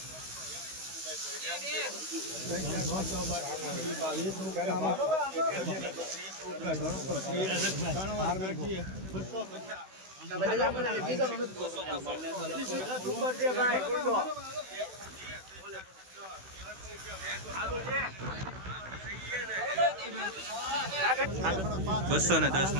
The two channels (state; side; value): late; left; 16 ms